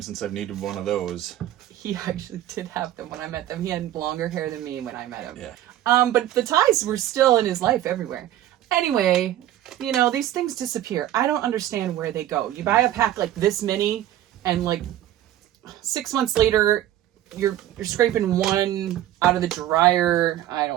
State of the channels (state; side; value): quieter; left; 12.8 dB